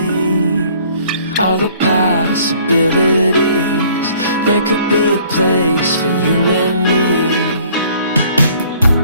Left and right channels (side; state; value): both; inverted; correlation -0.57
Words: all the possibilities. There could be a place for you and me.